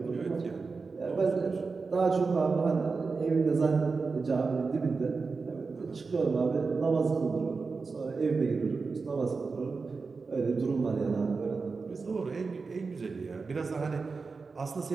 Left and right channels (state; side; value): quieter; left; 4.5 dB